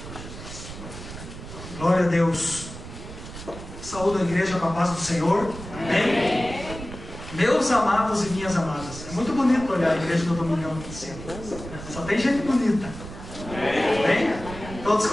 Glória a Deus. Saúde a igreja com a paz do Senhor. Amém. Meus amados e minhas amadas. É muito bonito olhar a igreja do Domingão aqui em cima. Só tem gente bonita. Amém? Todos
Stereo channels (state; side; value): noise; right; rumble, 12 dB below the sound